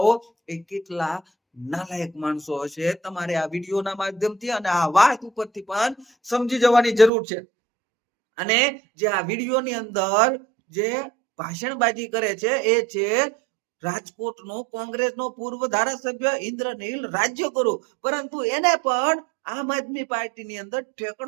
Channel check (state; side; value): drops out; left; at 7.1 s